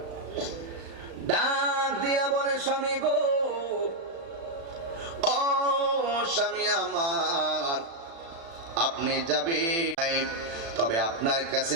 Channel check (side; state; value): left; late; 36 ms